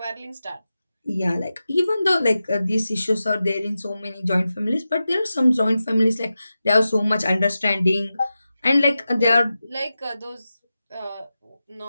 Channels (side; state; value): both; inverted; correlation -0.92